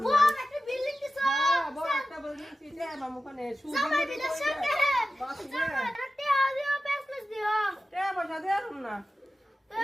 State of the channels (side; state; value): both; normal; correlation 0.94